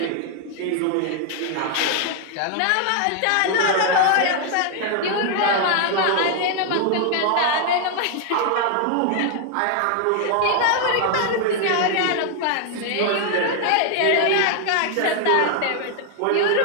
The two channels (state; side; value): different; both; correlation 0.00